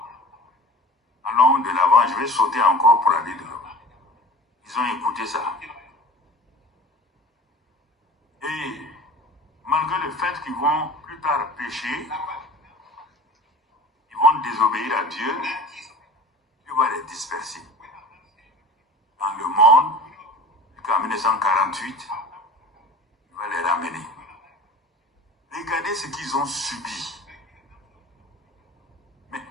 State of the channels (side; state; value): both; normal; correlation 0.40